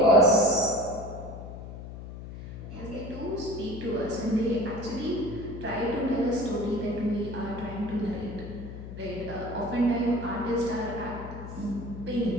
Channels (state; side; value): noise; left; hum, 11 dB below the sound